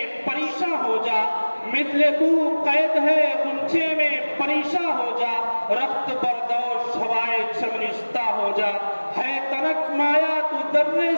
پریشاں ہو جا، مثل کو قید ہے غنچے میں پریشاں ہو جا، رخت بردوش ہوائے چمنشتہ ہو جا، ہے تنک مایا تو درے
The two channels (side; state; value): both; inverted; correlation -1.00